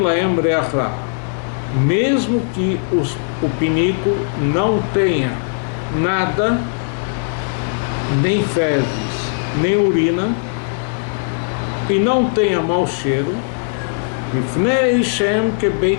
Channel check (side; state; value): right; silent; digital silence